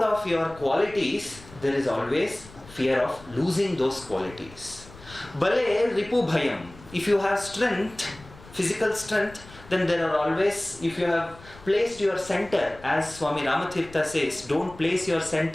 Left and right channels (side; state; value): left; noise; rumble, 20 dB below the sound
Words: of your qualities, there is always fear of losing those qualities. Bale Ripu Bhayam. If you have strength, physical strength, then there are always, if you have placed your center, as Swami Ramatirtha says, don't place your